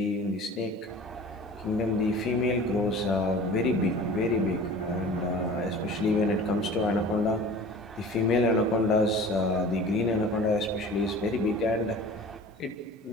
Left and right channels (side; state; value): both; normal; correlation 0.41